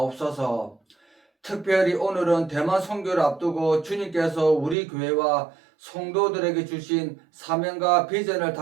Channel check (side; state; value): left; drops out; at 4.8 s